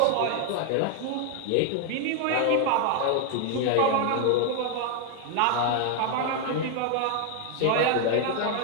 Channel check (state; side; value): different; both; correlation 0.00